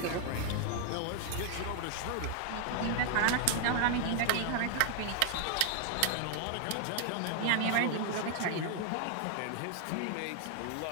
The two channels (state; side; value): different; both; correlation 0.00